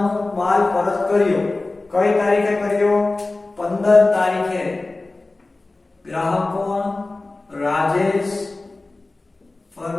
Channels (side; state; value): right; quieter; 3.2 dB